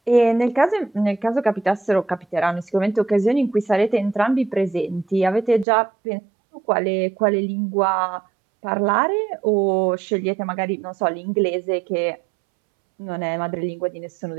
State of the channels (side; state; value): left; drops out; at 5.7 s